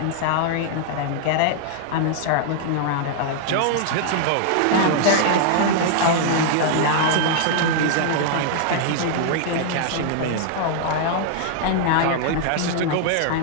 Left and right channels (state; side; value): different; both; correlation -0.01